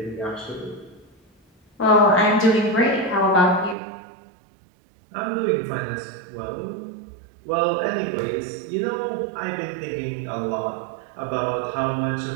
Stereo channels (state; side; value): drops out; left; at 3.8 s